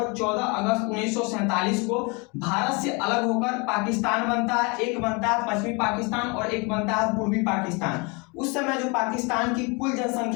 14 अगस्त 1947 को भारत से अलग होकर पाकिस्तान बनता है। एक बनता है पश्चिमी पाकिस्तान और एक बनता है पूर्वी पाकिस्तान। उस समय जो पाकिस्तान की कुल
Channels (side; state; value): right; quieter; 29.8 dB